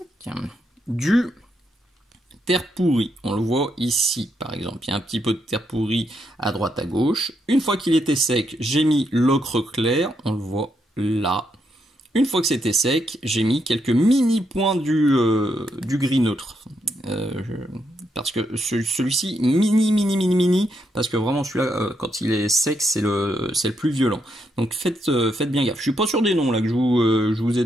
du terre pourrie. On le voit ici, par exemple. Il y a un petit peu de terre pourrie à droite, à gauche. Une fois qu'il était sec, j'ai mis l'ocre clair. On le voit là. Une fois que c'était sec, j'ai mis quelques mini points du gris neutre. Parce que celui-ci, mini, parce que vraiment celui-là, quand il est sec, c'est le plus violent. Donc faites bien gaffe. Je suis pas sûr des noms là que je vous ai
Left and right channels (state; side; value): normal; both; correlation 0.79